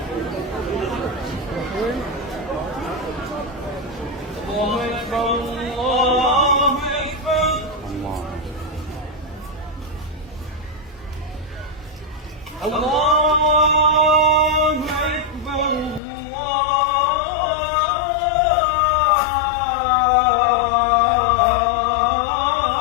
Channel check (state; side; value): drops out; right; at 16.0 s